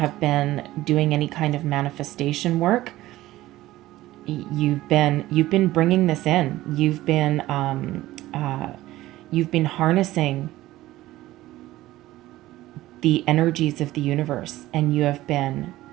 been doing any kind of manifestation work, you've been bringing this in. You've been harnessing the energies of the universe, and you have been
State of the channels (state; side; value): quieter; left; 16.3 dB